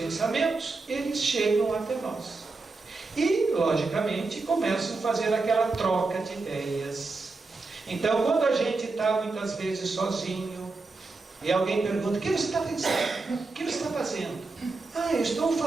eles chegam até nós. E, logicamente, começam a fazer aquela troca de ideias. Então, quando a gente está muitas vezes sozinho, e alguém pergunta: o que você está pensando? O que você está fazendo? Ah, eu estou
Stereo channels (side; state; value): left; quieter; 3.7 dB